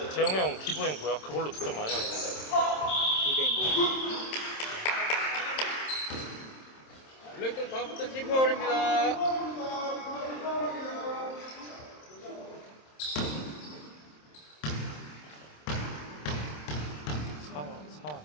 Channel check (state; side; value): late; right; 27 ms